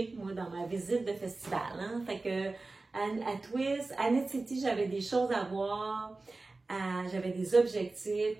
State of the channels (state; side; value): quieter; left; 3.4 dB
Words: moi, dans ma visite de festival. Hein? Fait que à Twist, à Knit City, j'avais des choses à voir, j'avais des objectifs.